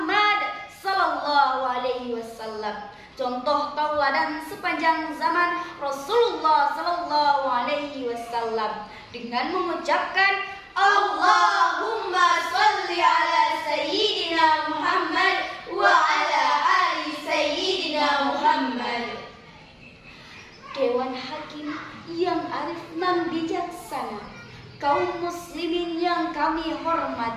sallallahu alaihi wasallam, contoh tauladan sepanjang zaman Rasulullah sallallahu alaihi wasallam, dengan mengucapkan Allahumma sholli ala sayyidina Muhammad wa ala ali sayyidina Muhammad. Dewan Hakim yang arif dan bijaksana, kaum muslimin yang kami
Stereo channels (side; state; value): both; identical; correlation 1.00